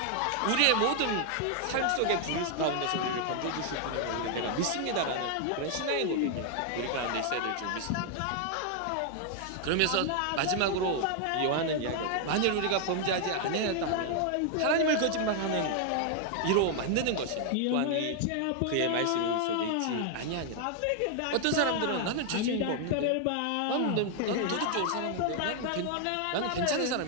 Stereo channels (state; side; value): different; both; correlation 0.00